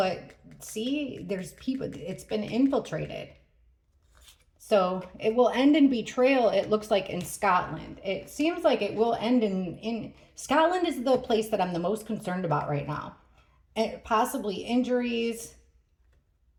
see, there's people, it's been infiltrated. So it will end in betrayal, it looks like, in Scotland. It seems like it will end in Scotland is the place that I'm the most concerned about right now. And possibly injuries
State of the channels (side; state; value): both; identical; correlation 1.00